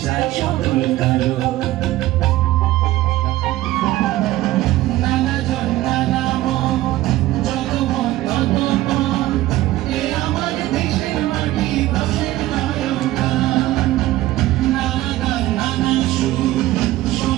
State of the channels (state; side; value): quieter; left; 16.4 dB